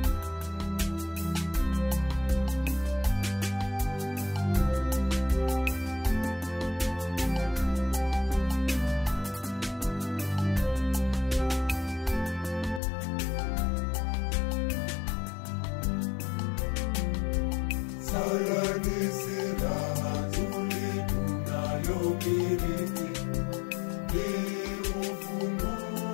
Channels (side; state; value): right; drops out; at 12.8 s